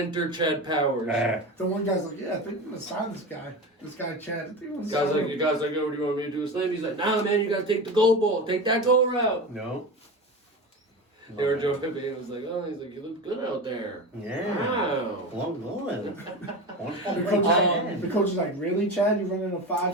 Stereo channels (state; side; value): normal; both; correlation 0.26